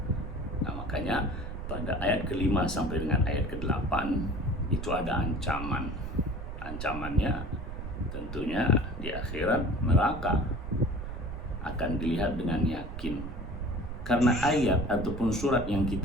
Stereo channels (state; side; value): noise; right; rumble, 7 dB below the sound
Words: Nah makanya pada ayat ke-5 sampai dengan ayat ke-8 itu ada ancaman. Ancamannya tentunya di akhirat neraka akan dilihat dengan yakin. Karena ayat ataupun surat yang